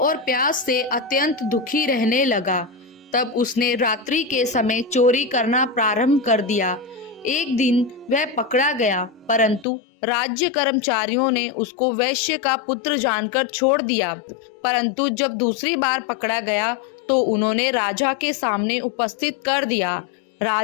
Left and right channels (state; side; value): drops out; right; at 9.7 s